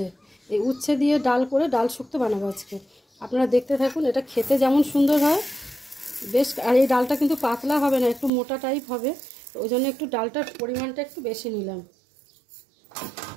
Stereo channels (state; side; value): drops out; left; at 8.3 s